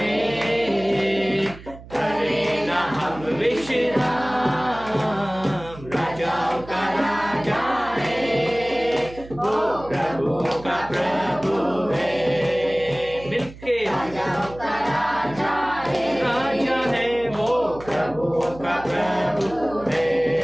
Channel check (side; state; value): right; noise; hum, 17 dB below the sound